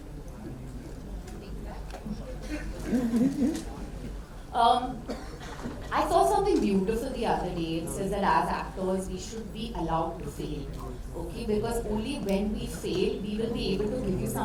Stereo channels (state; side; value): identical; both; correlation 1.00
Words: I saw something beautiful the other day. It says that as actors, we should be allowed to fail. Okay, because only when we fail, we will be able to give you